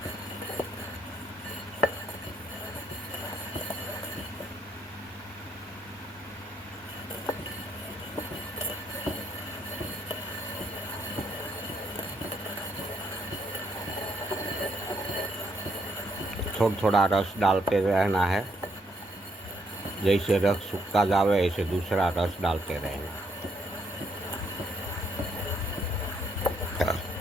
थोड़ा थोड़ा रस डालते रहना है, जैसे रस सूखता जावे ऐसे दूसरा रस डालते रहना।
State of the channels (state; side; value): normal; both; correlation 0.73